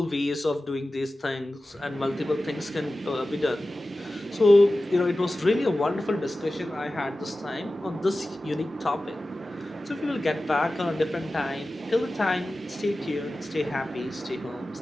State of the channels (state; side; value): normal; both; correlation 0.95